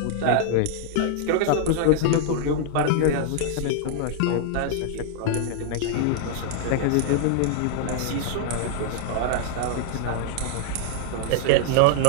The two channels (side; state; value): both; different; correlation -0.01